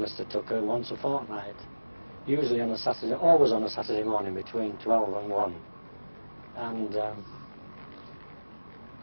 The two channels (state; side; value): inverted; both; correlation -1.00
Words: Tucker once a fortnight, usually on a Saturday, always on a Saturday morning between 12 and 1. And